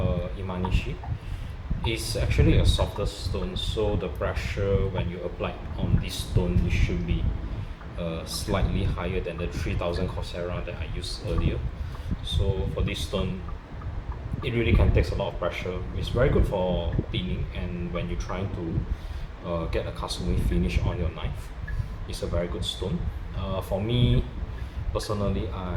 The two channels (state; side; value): identical; both; correlation 1.00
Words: Imanishi. It's actually a softer stone, so the pressure when you apply on this stone, it should be slightly higher than the 3000 Chosera that I used earlier. So for this stone, it really can take a lot of pressure. It's very good for cleaning, and when you're trying to get a kasumi finish on your knife, it's a very good stone. For me, personally,